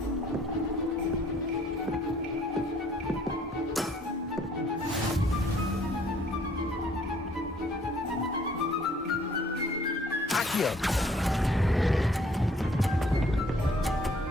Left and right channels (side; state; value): both; normal; correlation 0.60